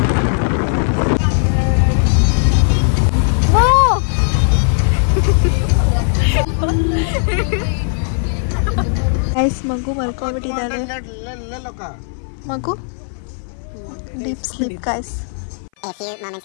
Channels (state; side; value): silent; right; 57 dB below the other